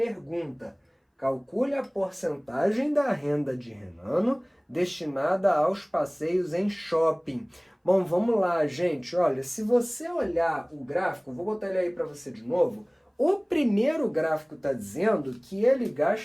Calcule a porcentagem da renda de Renano destinada aos passeios em shopping. Bom, vamos lá, gente. Olha, se você olhar o gráfico, vou botar ele aí para você de novo. O primeiro gráfico está dizendo que ele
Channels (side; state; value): both; identical; correlation 1.00